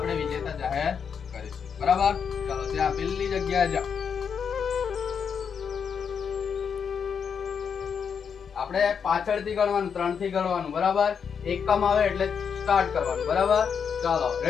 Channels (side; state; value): right; quieter; 6.8 dB